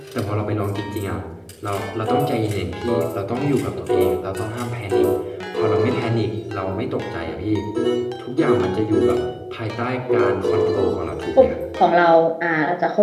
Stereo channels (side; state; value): both; identical; correlation 1.00